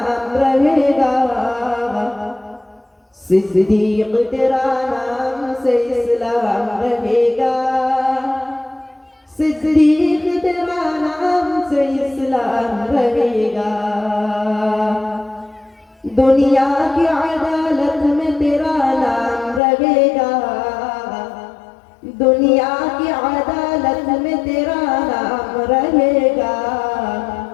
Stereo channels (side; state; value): right; drops out; at 19.6 s